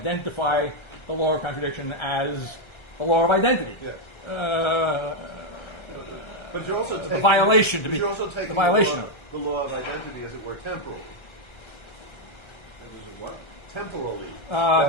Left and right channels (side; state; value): right; late; 1.3 ms